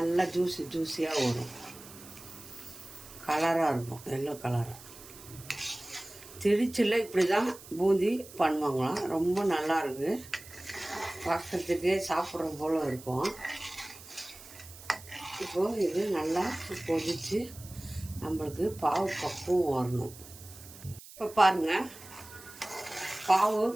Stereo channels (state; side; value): noise; right; hiss, 18 dB below the sound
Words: ஜூஸியாக வரும். கலராக இருக்கும், எல்லோ கலராக. திருச்சியில் இப்படி தான் பூந்தி பண்ணுவாங்களாம். ரொம்ப நல்லா இருக்குது, பார்க்குறதுக்கே சாப்பிட்ற போல் இருக்கும். இப்போது இது நல்லா கொதித்து நம்மளுக்கு பாவு பக்குவம் வரணும். இப்போ பாருங்கள், பாவு